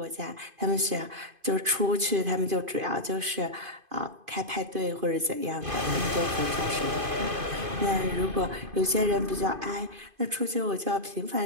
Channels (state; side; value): late; left; 2.5 ms